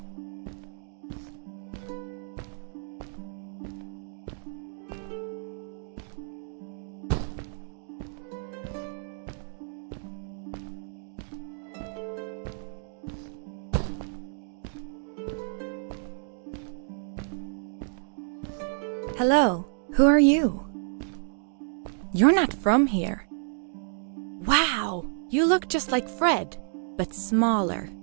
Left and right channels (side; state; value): left; silent; digital silence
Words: Hello, who are you? You're not from here. Wow, you look just like Fred, but smaller,